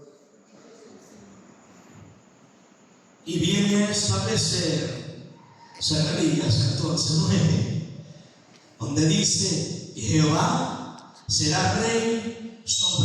Y viene a establecer Zacarías 14:9, donde dice: Jehová será rey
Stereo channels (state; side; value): identical; both; correlation 1.00